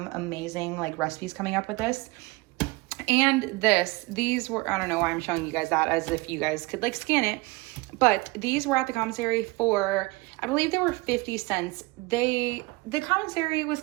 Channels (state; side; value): quieter; left; 23.7 dB